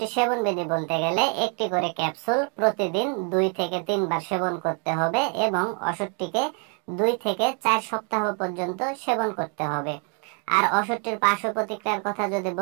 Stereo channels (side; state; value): left; quieter; 38.8 dB